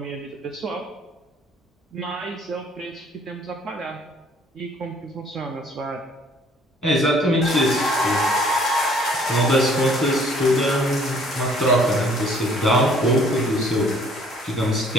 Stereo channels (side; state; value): both; normal; correlation 0.59